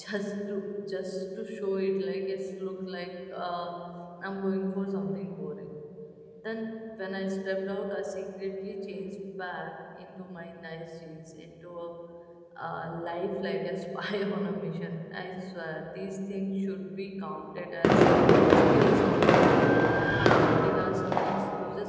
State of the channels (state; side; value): identical; both; correlation 1.00